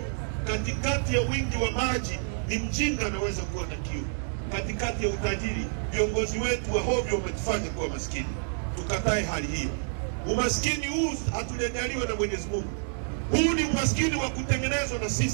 Katikati ya wingi wa maji ni mjinga anaweza kuwa na kiu. Katikati ya utajiri, viongozi wetu wa hovyo wametufanya kuwa maskini. Tukatae hali hiyo. Umaskini huu hatujaliwa na Mwenyezi Mungu. Huu ni umaskini wa kutengenezwa na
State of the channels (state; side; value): silent; left; digital silence